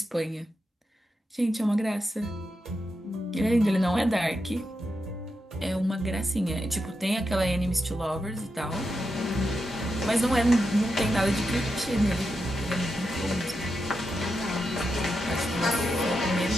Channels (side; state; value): both; normal; correlation 0.87